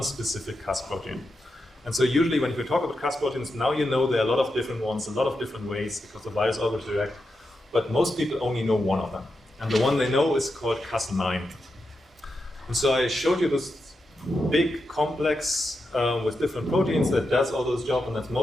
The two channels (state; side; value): normal; both; correlation 0.87